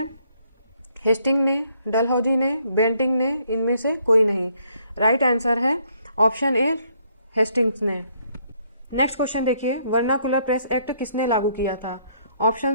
हेस्टिंग ने, डलहौजी ने, बेंटिंग ने, इनमें से कोई नहीं। राइट आंसर है ऑप्शन ए हेस्टिंग्स ने। नेक्स्ट क्वेश्चन देखिए, वर्नाकुलर प्रेस एक्ट किसने लागू किया था?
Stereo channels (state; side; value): inverted; both; correlation -0.68